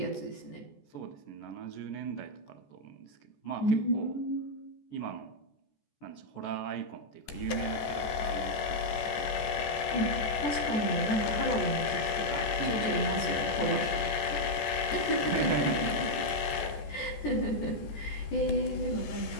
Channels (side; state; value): right; late; 14 ms